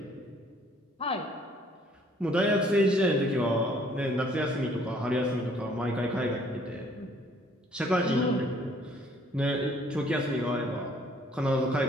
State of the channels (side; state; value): both; normal; correlation 0.60